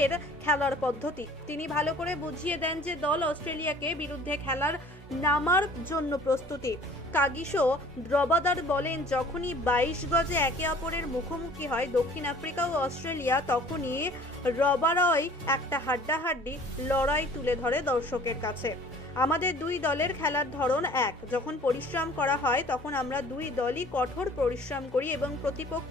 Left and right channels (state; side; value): normal; both; correlation 0.50